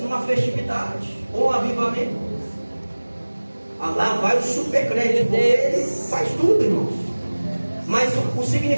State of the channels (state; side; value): inverted; both; correlation -1.00